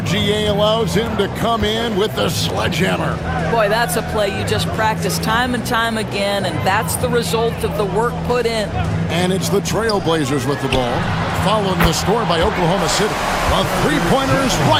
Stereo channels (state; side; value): identical; both; correlation 1.00